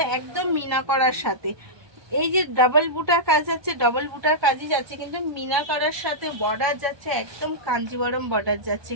একদম মিনা করার সাথে। এই যে ডাবল বুটার কাজ যাচ্ছে, ডাবল বুটার কাজই যাচ্ছে কিন্তু মিনা করার সাথে। বর্ডার যাচ্ছে একদম কাঞ্জিভারাম বর্ডার যাচ্ছে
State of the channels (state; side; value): late; left; 1.2 ms